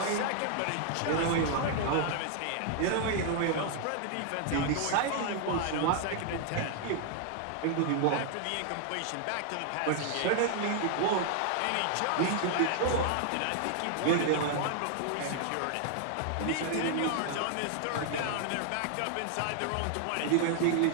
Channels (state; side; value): different; both; correlation 0.00